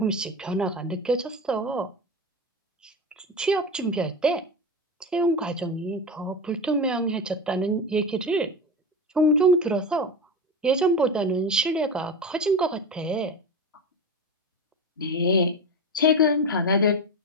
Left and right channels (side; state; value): both; normal; correlation 0.22